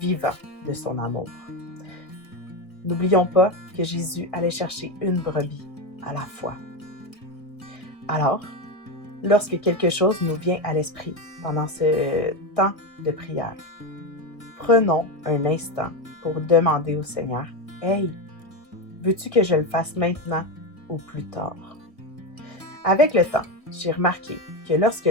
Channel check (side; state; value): right; late; 1.6 ms